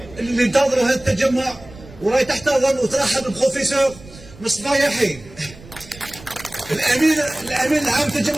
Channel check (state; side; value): noise; right; rumble, 20 dB below the sound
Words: اللي انتظروا هذا التجمع، وراي تحتضن وترحب بالبروفيسور مصطفى يحيى، الامين العام